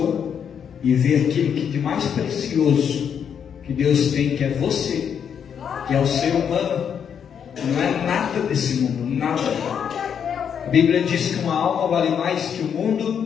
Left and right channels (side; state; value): right; quieter; 7.8 dB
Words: e ver aquilo que de mais precioso que Deus tem, que é você, que é o ser humano. Não é nada desse mundo, nada. A Bíblia diz que uma alma vale mais que o